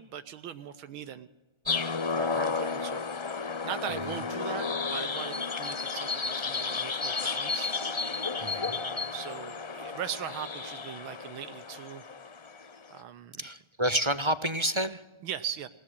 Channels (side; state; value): left; late; 1.3 ms